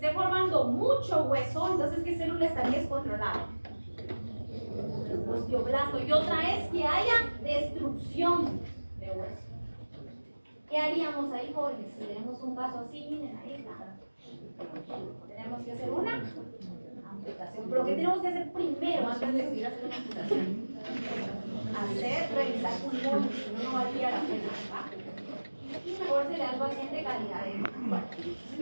formando mucho hueso, entonces ¿qué célula estaría descontrolada? Osteoblasto. Y otra es que haya destrucción de hueso. ¿Qué haríamos ahí, jóvenes? Si tenemos un caso así, miren, ahí está. Tenemos que hacer una amputación. ¿Pero qué tenemos que hacer primero antes de decidir hacer una amputación? Revisar pulmones, si no, no valdría la pena, ¿verdad? Y mejor se le da al paciente calidad de vida. Bueno,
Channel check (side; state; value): both; inverted; correlation -1.00